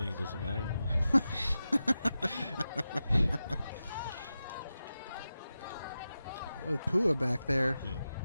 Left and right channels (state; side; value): inverted; both; correlation -0.92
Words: it doesn't matter anymore. With Pua back there,